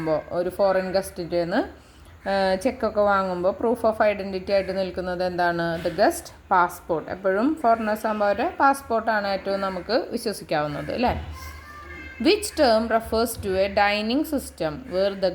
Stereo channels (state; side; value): identical; both; correlation 1.00